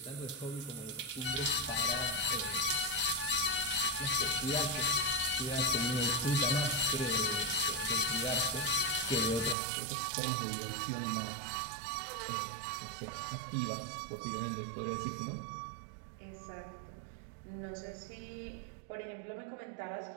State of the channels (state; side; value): drops out; left; at 9.6 s